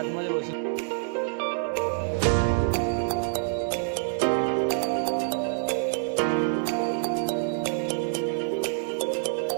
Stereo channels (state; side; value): silent; left; 60 dB below the other